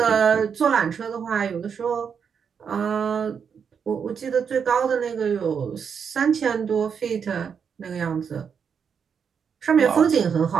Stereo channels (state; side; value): quieter; left; 6.8 dB